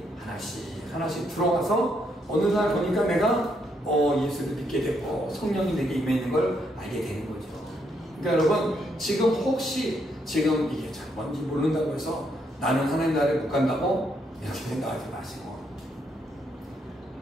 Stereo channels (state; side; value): normal; both; correlation 0.75